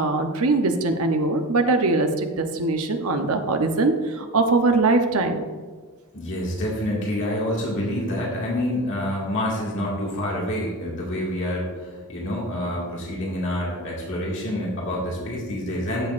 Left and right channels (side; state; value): both; normal; correlation 0.28